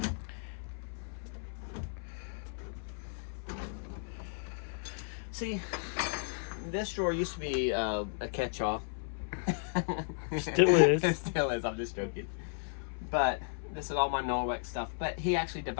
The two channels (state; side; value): silent; right; 55 dB below the other